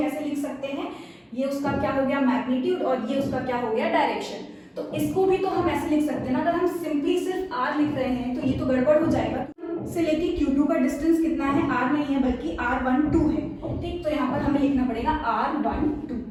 लिख सकते हैं, ये उसका क्या हो गया मैग्नीट्यूड और ये उसका क्या हो गया डायरेक्शन। तो इसको भी तो हम ऐसे लिख सकते हैं ना, अगर हम सिंपली सिर्फ R लिख रहे हैं तो ये तो गड़बड़ हो जाएगा। से लेके Q2 का डिस्टेंस कितना है, R नहीं है बल्कि R12 है। ठीक, तो यहाँ पर हमें लिखना पड़ेगा R12।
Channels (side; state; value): both; identical; correlation 1.00